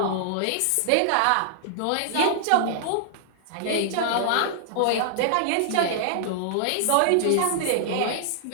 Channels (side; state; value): both; different; correlation -0.01